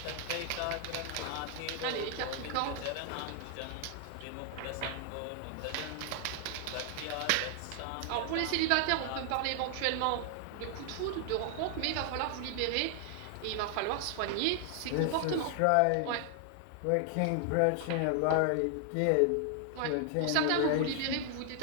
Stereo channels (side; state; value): both; different; correlation 0.00